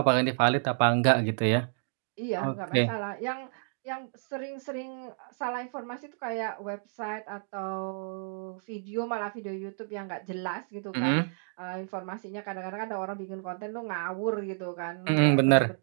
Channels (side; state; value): left; silent; digital silence